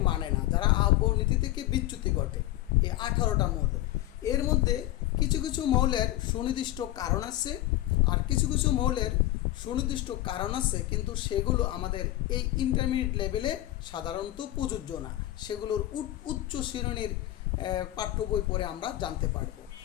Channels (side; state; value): right; quieter; 15.6 dB